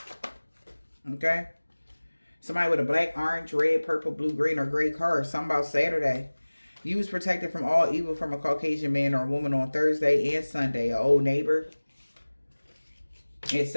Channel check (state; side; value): inverted; both; correlation -1.00